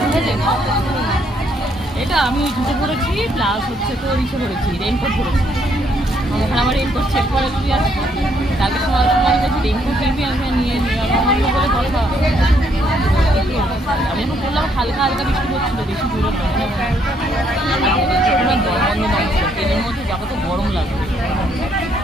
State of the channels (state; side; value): normal; both; correlation 0.71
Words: এটা আমি জুতো পরেছি প্লাস হচ্ছে তো ইসে পরেছি রেনকোট পরেছি ওখানে আমার রেনকোট চেক করে দিবি আসবো কালকে সময় বলছি রেনকোট কিনবি আমি নিয়ে নিই বলে কথা আমি এখন বললাম হালকা হালকা বৃষ্টি হচ্ছিল বেশি দূরে বন্ধ নয় ট্রেনের মধ্যে যাবো তো গরম লাগবে